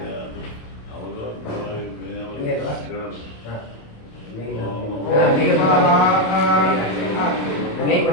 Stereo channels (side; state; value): right; late; 27 ms